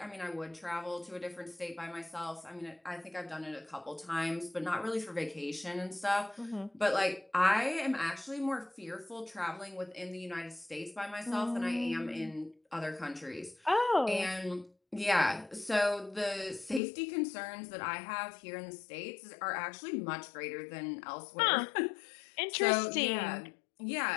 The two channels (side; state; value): right; drops out; at 16.8 s